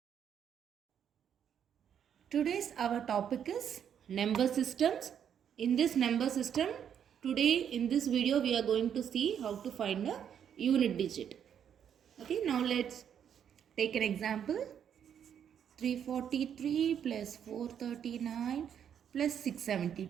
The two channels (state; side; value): quieter; left; 8.6 dB